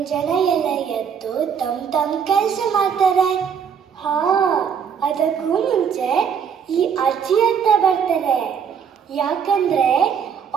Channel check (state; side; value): quieter; left; 7.3 dB